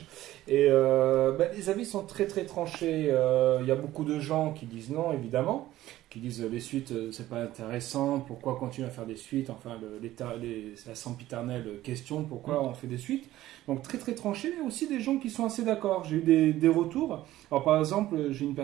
Et les avis sont très très tranchés. Il y a beaucoup de gens qui disent non, évidemment. Qui disent les suites, c'est pas intéressant. Pourquoi continuer à faire des suites ? Enfin, la sempiternelle question, pourquoi on fait des suites ? Donc très très tranché, mais aussi des gens qui sont assez d'accord. J'ai eu des retours. Alors par exemple, j'ai une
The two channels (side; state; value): left; quieter; 15.0 dB